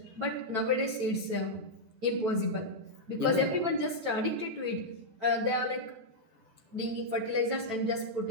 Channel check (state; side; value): late; left; 9.0 ms